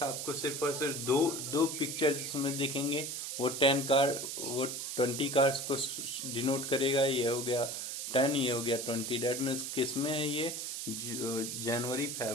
आपको सिर्फ और सिर्फ दो पिक्चर जिसमें दिखेंगे, वो 20 कार्स को डिनोट करेगा। ये हो गया 10, ये हो गया 20। डेट मीन्स किस में है ये, जनवरी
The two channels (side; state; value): right; noise; hiss, 5 dB below the sound